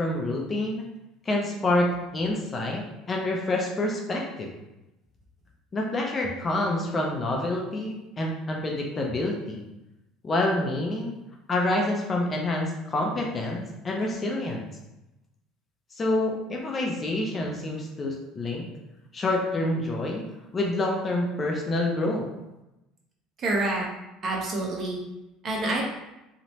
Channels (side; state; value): both; normal; correlation 0.64